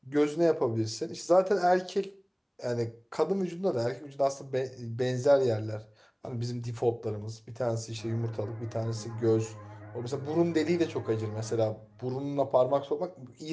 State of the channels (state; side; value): identical; both; correlation 1.00